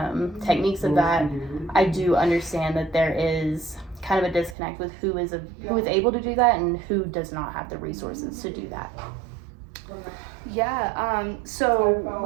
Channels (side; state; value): left; drops out; at 4.5 s